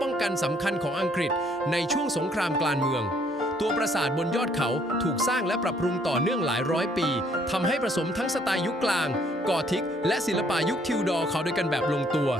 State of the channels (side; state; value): both; normal; correlation 0.65